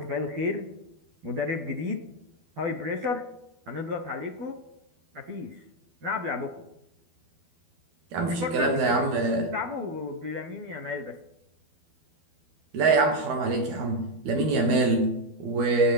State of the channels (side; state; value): left; late; 12 ms